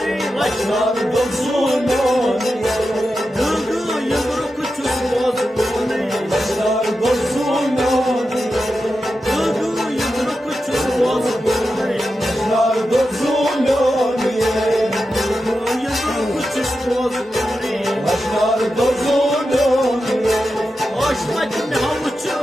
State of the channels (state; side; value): normal; both; correlation 0.90